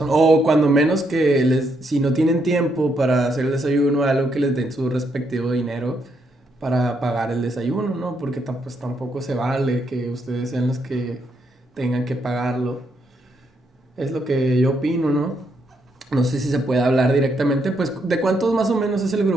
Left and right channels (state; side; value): normal; both; correlation 0.76